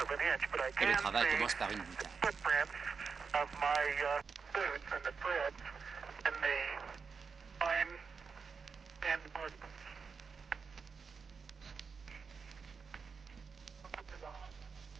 et le travail commence par une boutade.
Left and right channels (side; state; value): left; quieter; 5.4 dB